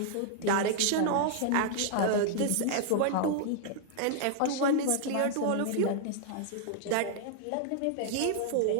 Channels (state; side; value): different; both; correlation -0.01